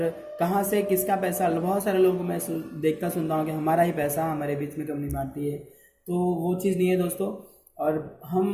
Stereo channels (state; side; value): identical; both; correlation 1.00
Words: कहाँ से किसका पैसा। बहुत सारे लोगों को मैं देखता सुनता हूँ कि हमारा ही पैसा हमारे बीच में कंपनी बांटती है, तो वो चीज़ नहीं है दोस्तों। और